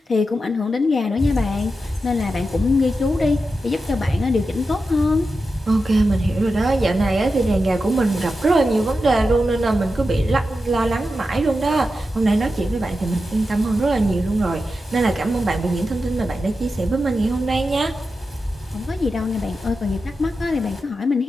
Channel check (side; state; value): both; normal; correlation 0.90